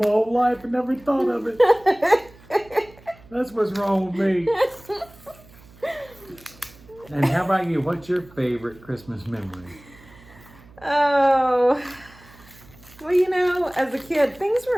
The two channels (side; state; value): right; noise; hum, 24 dB below the sound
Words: whole life and never thought of it. That's what's wrong with me. And how about you? What's your favorite Christmas memory? Oh, well, you know, as a kid, things were